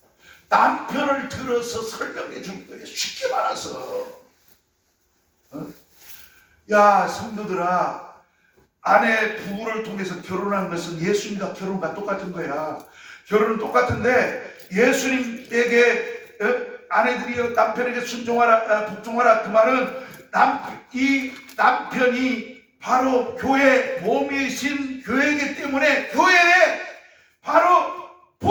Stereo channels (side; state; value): both; identical; correlation 1.00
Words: 남편을 들어서 설명해 줄 거예요. 쉽게 말해서. 야 성도들아, 아내 부부를 통해서 결혼한 것은 예수님과 결혼과 똑같은 거야. 결혼은 똑같은데 예수님에게 아내들이여 남편에게 순종하라 복종하라 그 말은 이 남편이 바로 교회 몸이신 교회이기 때문에 교회에 바로